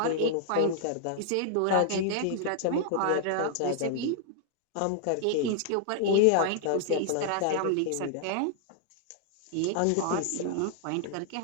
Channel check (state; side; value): different; both; correlation -0.01